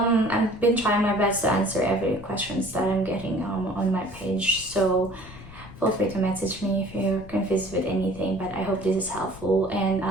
been trying my best to answer every questions that I'm getting on my page. So feel free to message me if you're confused with anything. But I hope this is helpful, and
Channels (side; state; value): left; noise; rumble, 16 dB below the sound